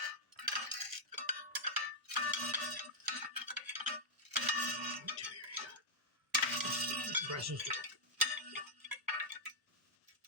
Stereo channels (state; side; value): normal; both; correlation -0.06